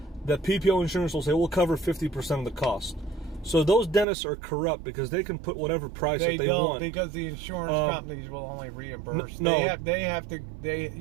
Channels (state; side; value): drops out; left; at 4.0 s